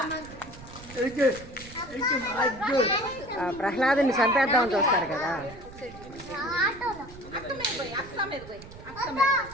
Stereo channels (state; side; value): noise; right; rumble, 17 dB below the sound